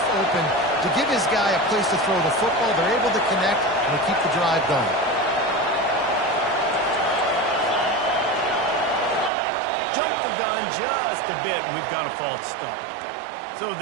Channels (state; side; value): drops out; left; at 9.3 s